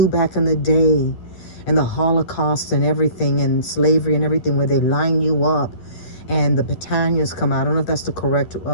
back in the day, and the Holocaust and everything, and slavery and everything, where they line you up and the battalions come out. I don't know if that's the correct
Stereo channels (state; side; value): late; right; 11 ms